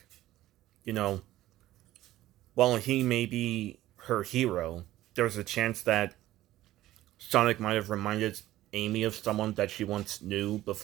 You know, while he may be her hero, there's a chance that Sonic might have reminded Amy of someone that she once knew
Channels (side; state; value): left; quieter; 15.0 dB